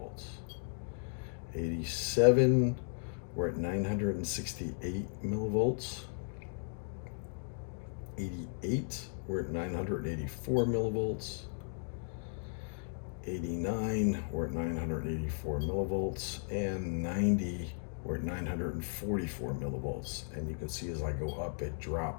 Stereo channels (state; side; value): silent; right; digital silence